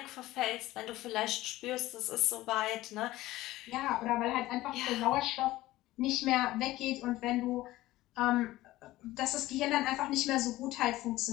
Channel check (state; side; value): quieter; right; 16.9 dB